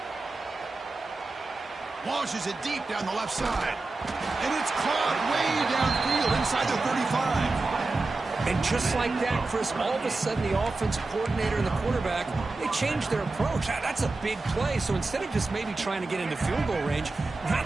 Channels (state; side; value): quieter; left; 3.4 dB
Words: Launches it deep down the left side. And it's caught way downfield inside the 35. And just like that, Chris, all of a sudden the offensive coordinator and the quarterback, they changed their approach. That's a big play. So instead of just maybe trying to get into field goal range, now